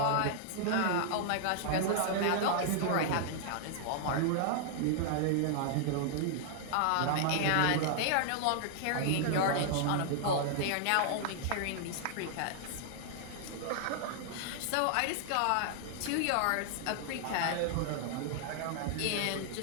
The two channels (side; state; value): both; different; correlation -0.01